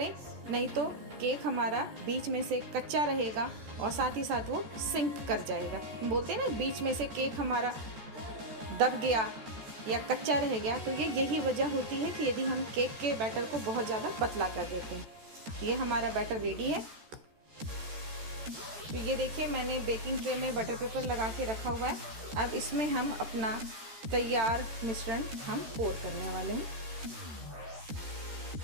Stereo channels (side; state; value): left; late; 14 ms